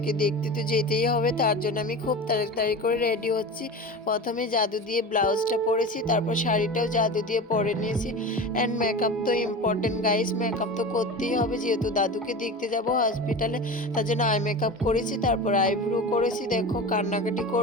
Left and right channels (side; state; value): both; normal; correlation 0.30